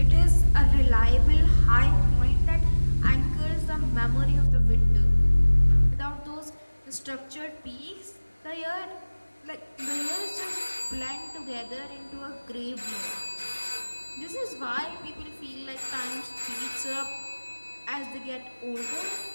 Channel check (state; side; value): inverted; both; correlation -1.00